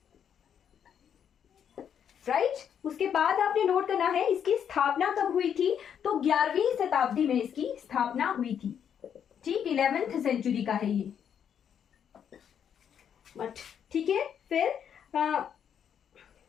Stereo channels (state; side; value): quieter; right; 8.4 dB